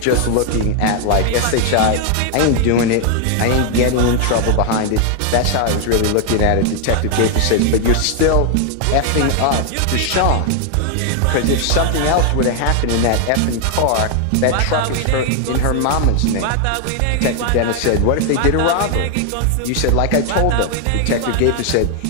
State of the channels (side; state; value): both; different; correlation 0.00